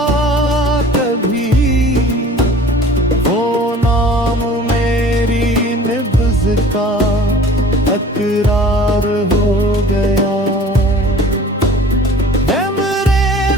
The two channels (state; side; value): normal; both; correlation 0.47